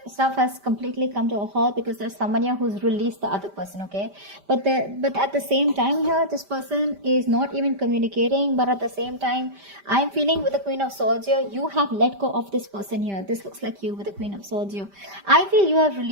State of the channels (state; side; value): late; left; 5.1 ms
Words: stuff has completely come to a halt, because there's someone here who's released the other person. Okay, but at the same time here, this person is not even communicating. But at the same time, I'm feeling with the Queen of Swords here, you have let go of this person here. This looks like you with the Queen of Swords here. I feel you have